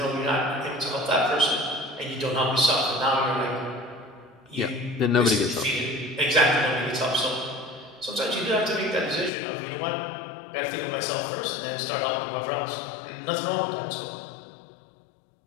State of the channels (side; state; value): right; drops out; at 9.3 s